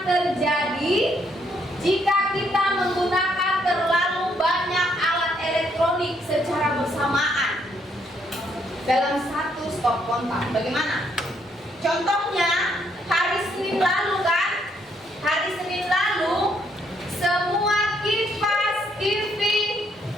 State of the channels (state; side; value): normal; both; correlation 0.72